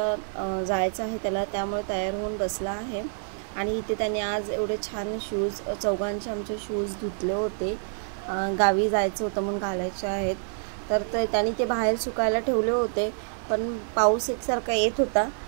जायचं आहे त्याला, त्यामुळे तयार होऊन बसला आहे। आणि इथे त्याने आज एवढे छान शूज, चौघांचे आमचे शूज धुतले होते, गावी जायचं होतं म्हणून घालायचे आहेत। तर त्याने ते बाहेर सुकायला ठेवले होते, पण पाऊस एकसारखा येत होता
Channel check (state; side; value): silent; left; 56 dB below the other